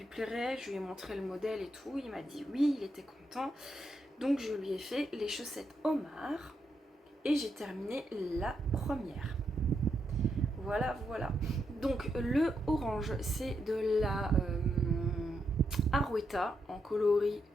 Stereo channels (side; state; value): both; normal; correlation 0.81